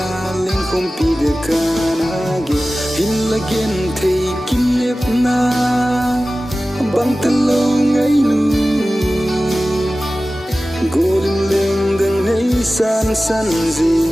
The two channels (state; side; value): normal; both; correlation 0.96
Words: leng khom pi de kana ge hin la gen thei kim nep na bang ta lâu ngày nu golden lên đằng nấy san san